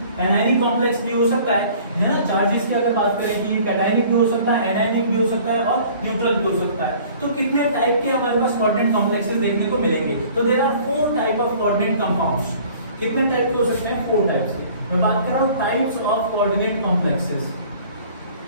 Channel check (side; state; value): both; inverted; correlation -0.51